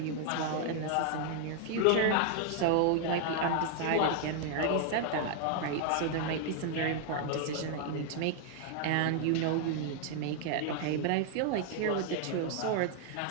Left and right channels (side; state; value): both; different; correlation 0.00